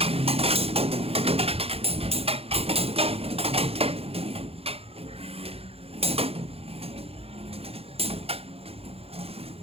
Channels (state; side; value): late; left; 0.29 ms